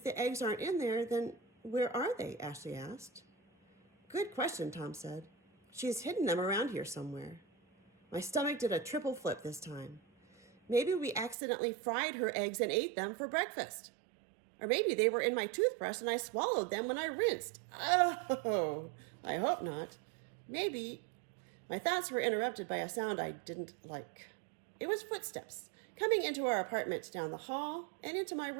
the eggs aren't in there, then where are they? Ashley asked. Good question, Tom said. She's hidden them around here somewhere. My stomach did a triple flip this time. Maybe we accidentally fried her eggs and ate them for breakfast. Or maybe they were in my toothbrush and I swallowed them when I rinsed. Oh, I hope not. Maybe. My thoughts were interrupted by a sound I didn't like. It was footsteps coming into our apartment down the hall and into my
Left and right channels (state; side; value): drops out; left; at 11.4 s